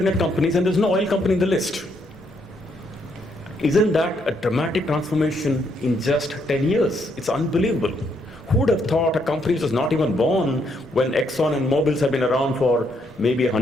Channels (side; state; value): both; normal; correlation 0.74